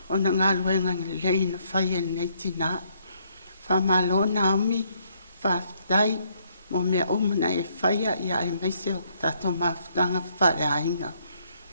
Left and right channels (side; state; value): both; inverted; correlation -0.69